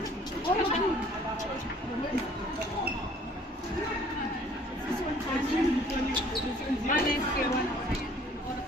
Malis kay Juan. Oras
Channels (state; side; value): normal; both; correlation 0.55